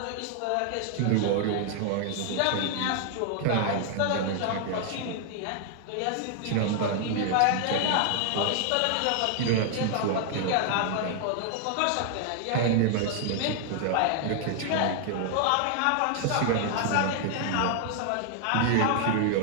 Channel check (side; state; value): both; different; correlation 0.00